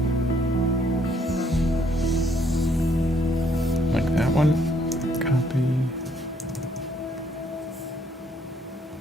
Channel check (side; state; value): both; normal; correlation 0.68